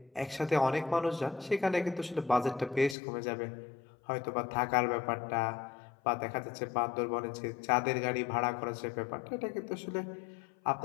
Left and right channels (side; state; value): right; drops out; at 3.0 s